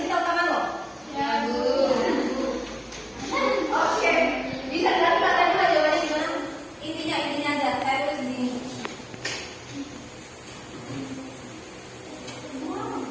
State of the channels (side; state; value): both; identical; correlation 1.00